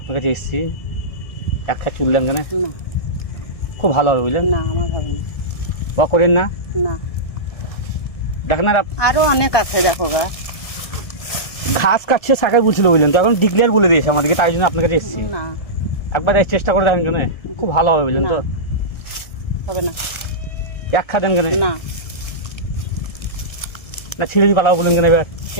কাছে এসেছি। একটা চুল দেন কেন? খুব ভালো হবে, বুঝলেন? না, আমার হবে না। বা করেন না? না, দেখেন আর আরো অনেক আছে, দেখো গা। ঘাস কাটছে শাখায় বলছিল, বুঝলেন? তো এখন ডিক্লেয়ার বলে দিয়েছে আমাদেরকে, তাই জন্য আপনার কাছে এসেছি। না, একবার চেষ্টা করে দেখেন কেন, খুব ভালো হবে, বুঝলেন? তো হবে না। এক খা দেন কেন? না, না ছিঁড়ে দিয়ে পালাবো বলেন কেন? এবার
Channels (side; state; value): right; late; 1.7 ms